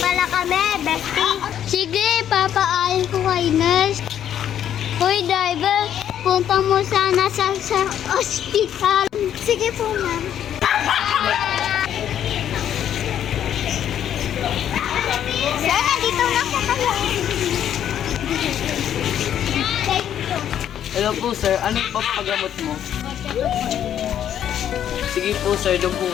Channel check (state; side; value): quieter; right; 10.1 dB